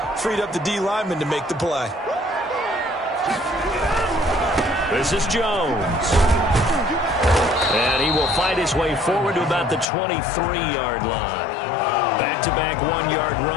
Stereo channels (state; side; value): drops out; right; at 9.9 s